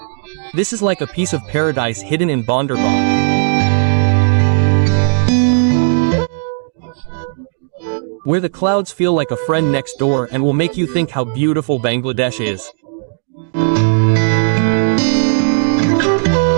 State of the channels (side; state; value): left; silent; digital silence